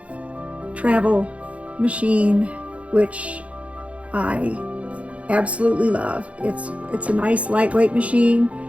travel machine, which I absolutely love. It's a nice lightweight machine,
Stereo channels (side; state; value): left; late; 0.064 ms